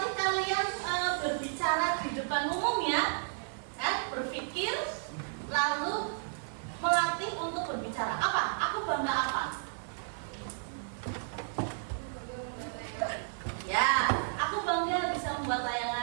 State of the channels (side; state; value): left; silent; 56 dB below the other